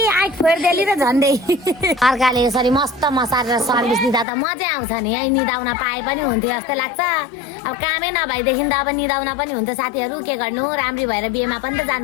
आइ फोर्देली र झन्डै अर्काले यसरी मस्त मसारेर सर्भिस दिँदा त मजा आउँछ नि है निदाउन पाए पनि हुन्थ्यो जस्तै लाग्छ अब कामै नभएदेखि त अब निदाउन पनि हुन्छ साथीहरू के गर्नु राम्री भएर बिहेमा पनि त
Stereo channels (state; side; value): drops out; right; at 4.2 s